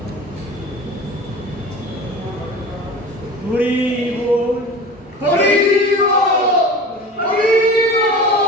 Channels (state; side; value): normal; both; correlation 0.36